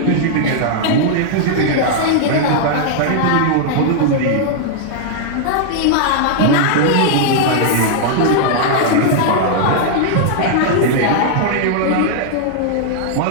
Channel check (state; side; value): different; both; correlation -0.01